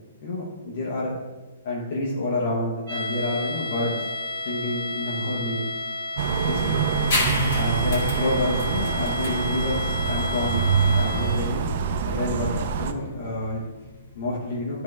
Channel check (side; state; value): both; inverted; correlation -0.52